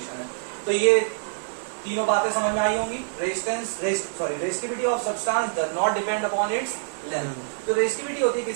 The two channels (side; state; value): left; silent; digital silence